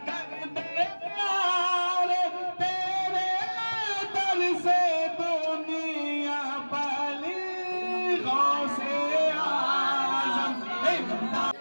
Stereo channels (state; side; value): inverted; both; correlation -1.00